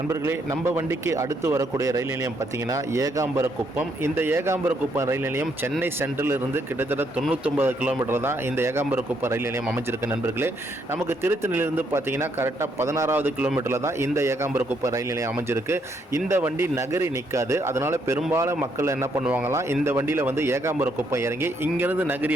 நம்ம வண்டிக்கு அடுத்து வரக்கூடிய ரயில் நிலையம் பார்த்தீங்கன்னா ஏகாம்பரக்குப்பம். இந்த ஏகாம்பரக்குப்பம் ரயில் நிலையம் சென்னை சென்ட்ரல் இருந்து கிட்டத்தட்ட 99 கிலோமீட்டர் தான் இந்த ஏகாம்பரக்குப்பம் ரயில் நிலையம் அமைஞ்சிருக்கு நண்பர்களே. நமக்கு திருத்தணியிலிருந்து பார்த்தீங்கன்னா கரெக்டாக 16வது கிலோமீட்டரில் தான் இந்த ஏகாம்பரக்குப்பம் ரயில் நிலையம் அமைஞ்சிருக்கு. இந்த வண்டி நகரி நிற்காது. அதனால் பெரும்பாலும் மக்கள் என்ன பண்ணுவாங்களாம், இந்த வண்டியில் வந்து ஏகாம்பரக்குப்பம் இறங்கி இங்கேருந்து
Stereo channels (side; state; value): both; normal; correlation 0.73